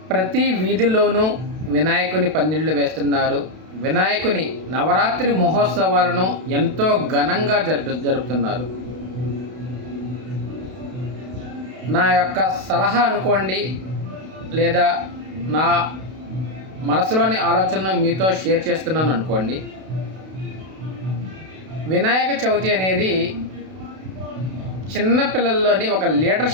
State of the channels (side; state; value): left; late; 32 ms